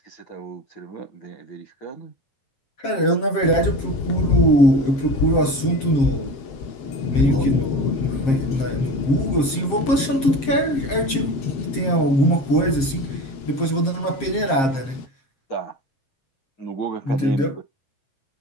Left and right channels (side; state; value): right; late; 7.5 ms